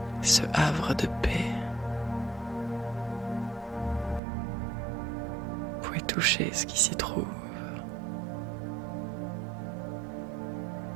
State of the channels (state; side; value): drops out; left; at 4.2 s